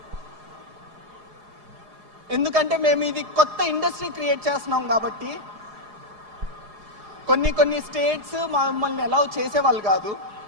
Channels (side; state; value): left; late; 4.8 ms